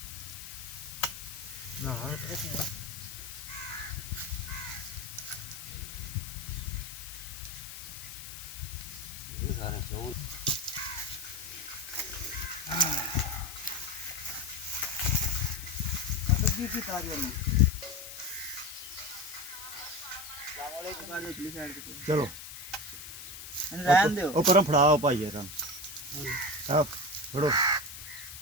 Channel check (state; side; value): noise; left; hiss, 11 dB below the sound